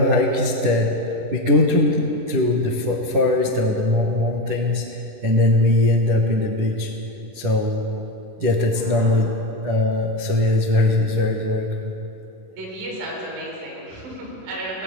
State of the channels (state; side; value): late; left; 10 ms